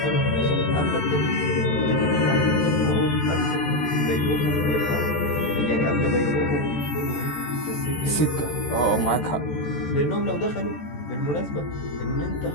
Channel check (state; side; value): late; right; 14 ms